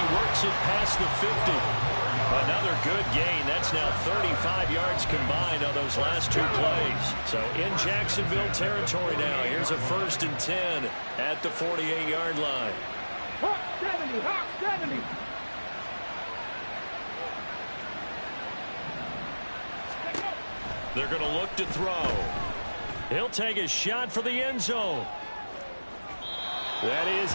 works it past the 50. Another good gain. That's now 35 yards combined on those last 2 plays. So in Jacksonville territory now. Here's a 1st and 10 at the 48-yard line. Hawk 70, Hawk 70. They're going to look to throw. He'll take a shot for the end zone. That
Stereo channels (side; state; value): both; inverted; correlation -1.00